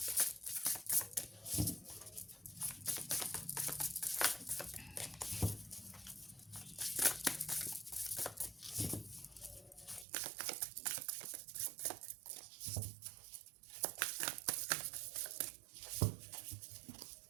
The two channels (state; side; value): drops out; left; at 10.1 s